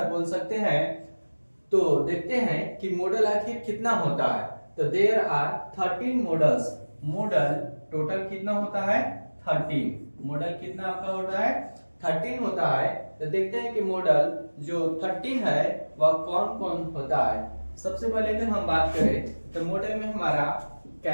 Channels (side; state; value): both; inverted; correlation -1.00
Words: बोल सकते हैं। तो देखते हैं कि मॉडल आखिर कितना होता है। तो there are 13 models. Model total कितना होता है, 13। मॉडल कितना आपका होता है, 13 होता है। तो देखते हैं कि मॉडल जो 13 है वह कौन कौन होता है। सबसे पहले अगर हम बात करें तो मॉडल में हमारा